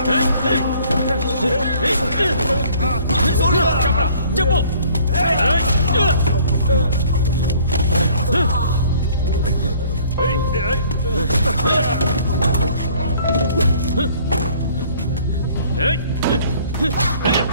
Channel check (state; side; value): inverted; both; correlation -0.56